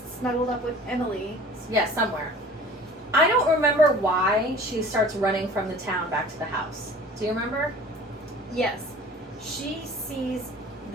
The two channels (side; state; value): both; normal; correlation 0.45